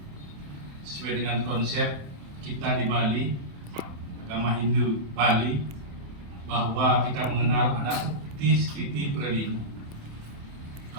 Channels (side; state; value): left; late; 28 ms